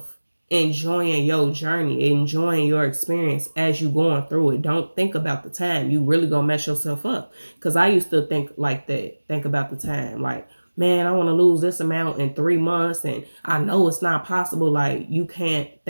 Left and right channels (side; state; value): both; inverted; correlation -1.00